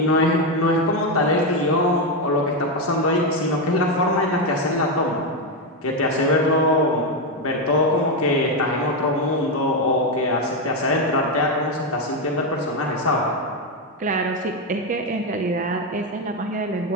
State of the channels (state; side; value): normal; both; correlation 0.07